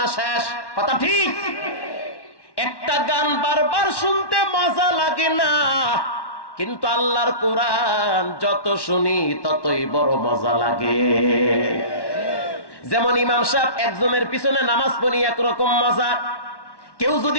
শেষ, কথা ঠিক? একটা গান বারবার শুনতে মজা লাগে না, কিন্তু আল্লাহর কোরআন যত শুনি ততই বড় মজা লাগে। যেমন ইমাম সাহেব একজনের পিছনে নামাজ পড়ি একরকম মজা, কেউ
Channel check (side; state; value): right; late; 1.1 ms